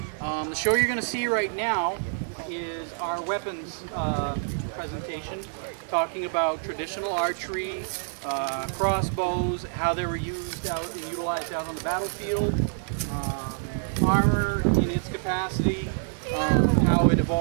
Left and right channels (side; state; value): left; silent; digital silence